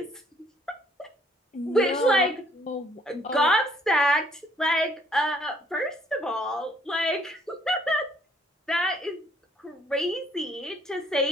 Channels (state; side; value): normal; both; correlation 0.64